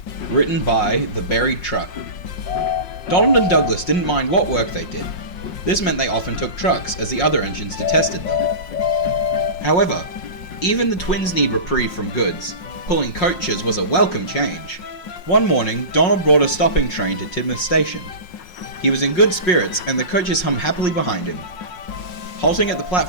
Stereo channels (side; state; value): right; late; 5.5 ms